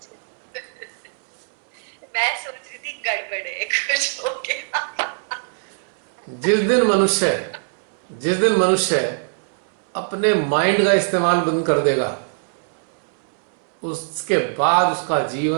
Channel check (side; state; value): left; silent; 64 dB below the other